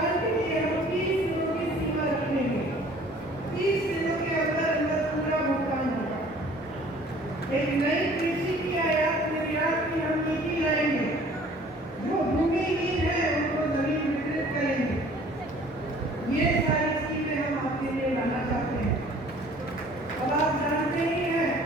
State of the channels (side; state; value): both; normal; correlation 0.52